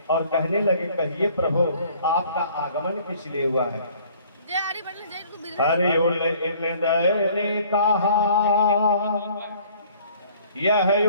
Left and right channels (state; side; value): inverted; both; correlation -0.55